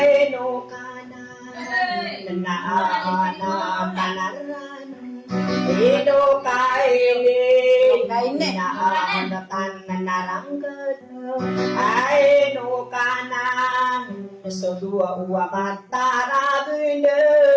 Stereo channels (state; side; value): identical; both; correlation 1.00